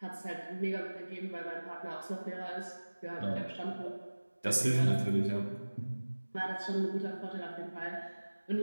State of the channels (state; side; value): inverted; both; correlation -1.00